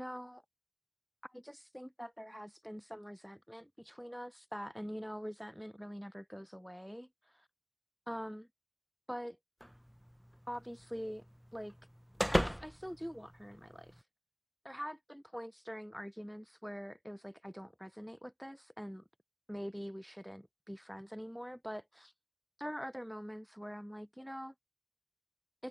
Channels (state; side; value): identical; both; correlation 1.00